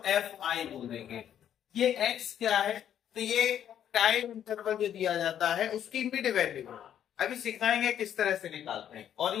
एफ आई बोल देंगे। ये एक्स क्या है, तो ये टाइम इंटरवल जो दिया जाता है उसकी इमीडिएट वैल्यू है। अभी सिखाएंगे किस तरह से निकालते हैं। और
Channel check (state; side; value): quieter; right; 10.0 dB